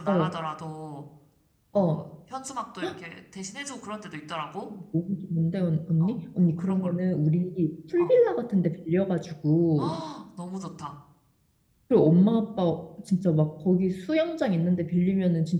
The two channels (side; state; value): both; identical; correlation 1.00